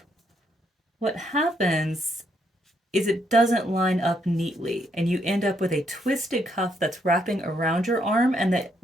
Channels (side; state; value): both; normal; correlation 0.74